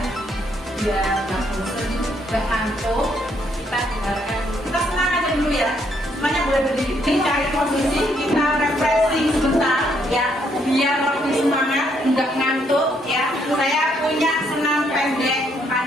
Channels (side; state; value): both; normal; correlation 0.72